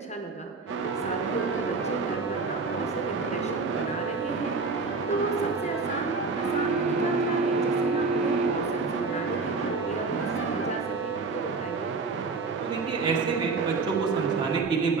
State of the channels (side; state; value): left; quieter; 4.2 dB